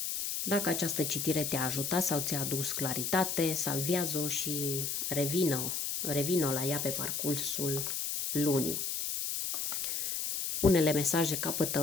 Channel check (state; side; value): noise; left; hiss, 2 dB below the sound